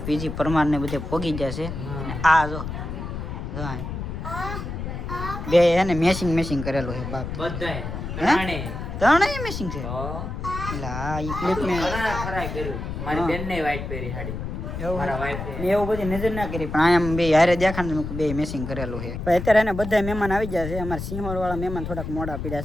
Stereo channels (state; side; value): noise; left; rumble, 6 dB below the sound